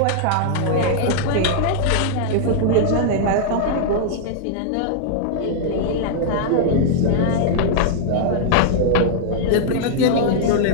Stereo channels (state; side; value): different; both; correlation -0.01